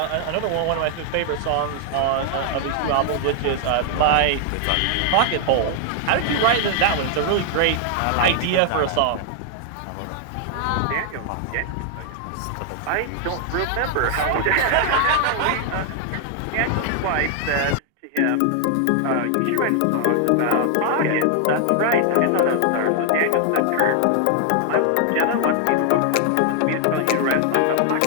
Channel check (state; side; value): different; both; correlation 0.00